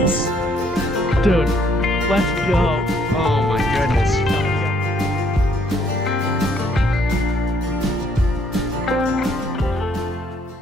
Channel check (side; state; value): both; normal; correlation 0.66